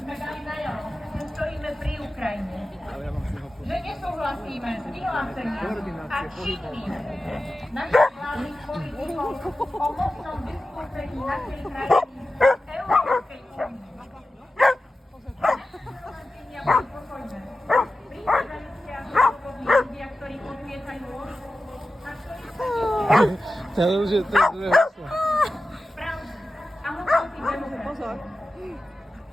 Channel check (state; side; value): normal; both; correlation 0.94